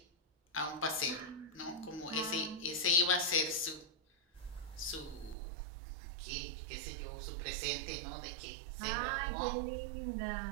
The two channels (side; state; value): left; drops out; at 5.4 s